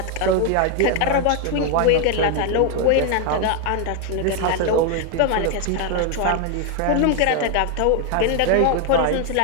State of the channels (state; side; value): different; both; correlation 0.01